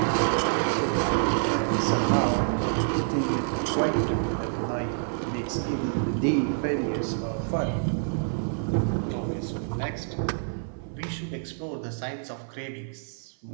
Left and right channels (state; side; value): silent; left; 56 dB below the other